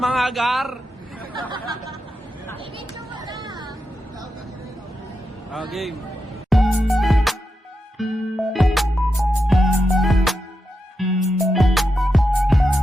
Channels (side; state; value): both; normal; correlation 0.87